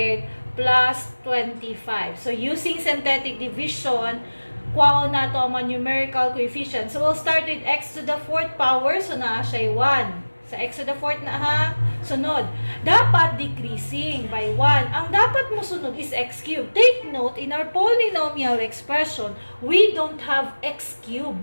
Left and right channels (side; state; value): both; inverted; correlation -1.00